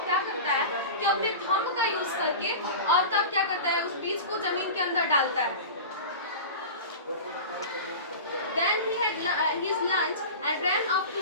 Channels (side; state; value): both; inverted; correlation -0.31